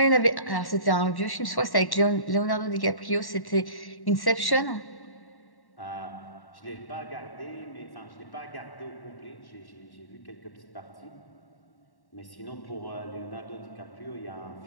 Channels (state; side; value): late; right; 1.1 ms